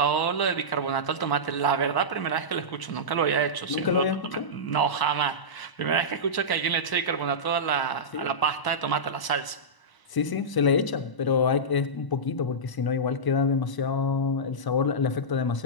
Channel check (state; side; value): late; right; 1.0 ms